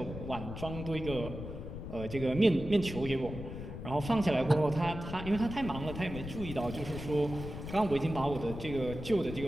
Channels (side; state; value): left; noise; rumble, 9 dB below the sound